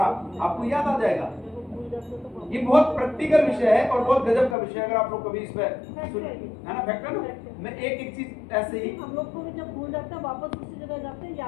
आपको याद आ जाएगा। ये बहुत प्रैक्टिकल विषय है और बहुत गजब का विषय है। अगर आप लोग कभी इस पे है ना, फैक्ट है ना, मैं एक चीज ऐसे ही, हम लोग को भी जब भूल जाते हैं वापस उसी जगह जाते हैं,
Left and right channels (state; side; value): drops out; right; at 4.5 s